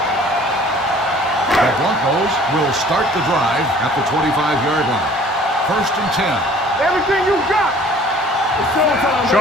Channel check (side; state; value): both; normal; correlation 0.52